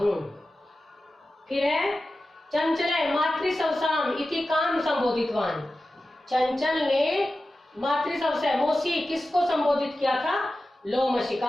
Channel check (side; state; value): both; normal; correlation 0.94